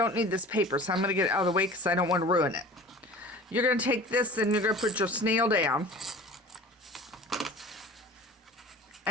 need this paper, so I'm going to get it out of the way because I don't want to ruin it. You're going to take this and you're going to put your snail down.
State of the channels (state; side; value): normal; both; correlation 0.40